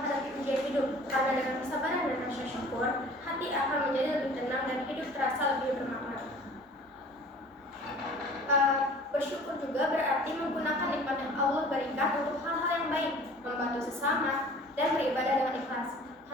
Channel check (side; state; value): both; normal; correlation 0.47